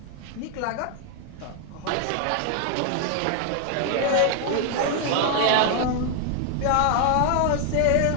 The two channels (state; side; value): different; both; correlation 0.00